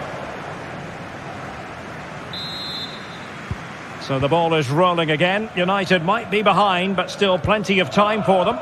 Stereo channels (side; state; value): both; identical; correlation 1.00